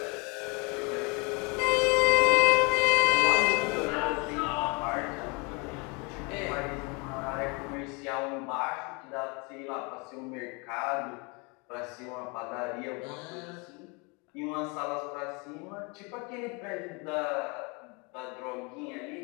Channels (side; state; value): right; quieter; 30.4 dB